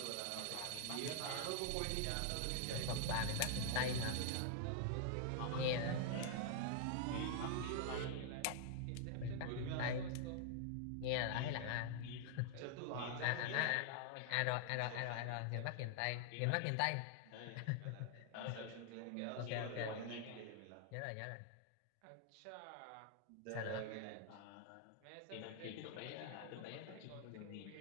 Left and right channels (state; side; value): different; both; correlation 0.00